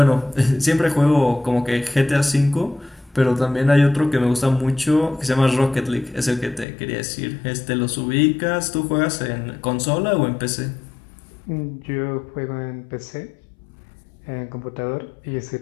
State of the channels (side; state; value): right; drops out; at 6.7 s